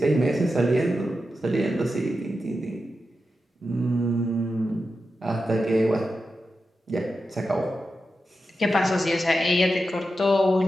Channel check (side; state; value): both; normal; correlation 0.90